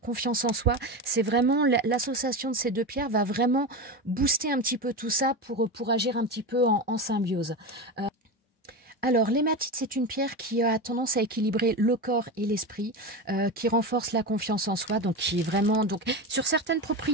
en soi. C'est vraiment l'association de ces deux pierres va vraiment booster un petit peu tout ça pour agir un petit peu en symbiose. Alors, l'hématite, c'est une pierre qui a tendance à équilibrer le corps et l'esprit, qui renforce la confiance en soi, donc qui est vraiment sur certaines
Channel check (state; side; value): normal; both; correlation 0.21